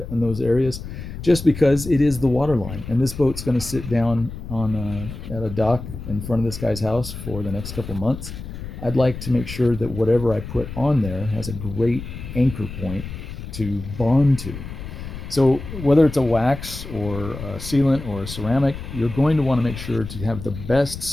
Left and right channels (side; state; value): left; noise; rumble, 10 dB below the sound